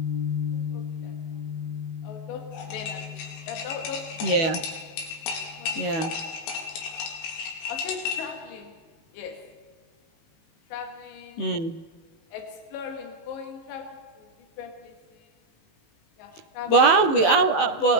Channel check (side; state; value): right; late; 19 ms